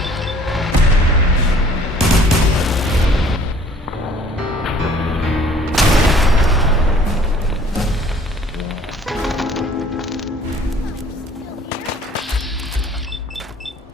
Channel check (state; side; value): normal; both; correlation 0.55